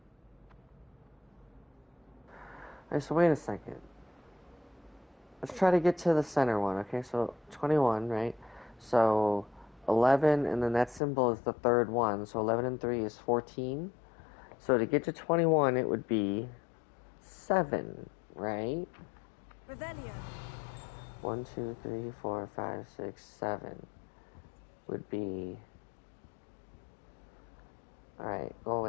Alright, so wait a second. Let's try to get to the center one, okay? So 21, right? So 11, and then that symbol is the third one. So 11 and 3 is 14. So to get to 21, it would be 7, right? Revelio. 1, 2, 3, 4, 5, 6, 7 would be... Alright, go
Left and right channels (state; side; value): drops out; right; at 11.0 s